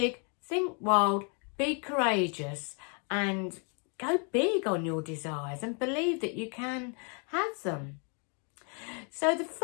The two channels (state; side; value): quieter; right; 38.6 dB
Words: think wild, be courageous, and go big on your desires and believe that you can have them. So the